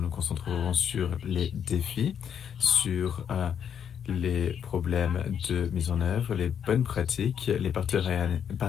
concentrerons sur les défis, sur les problèmes de mise en œuvre, les bonnes pratiques, les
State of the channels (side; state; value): right; quieter; 8.3 dB